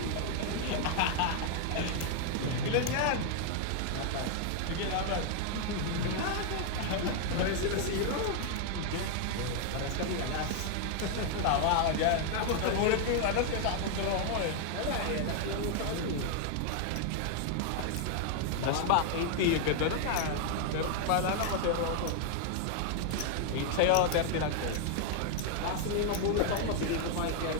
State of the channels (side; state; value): both; different; correlation 0.00